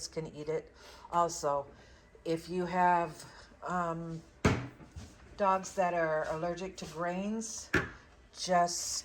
can eat it. Also, if you have dogs that are allergic to grains,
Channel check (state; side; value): identical; both; correlation 1.00